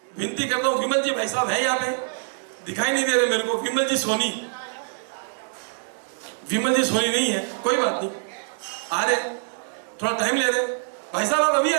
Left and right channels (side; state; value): left; silent; 62 dB below the other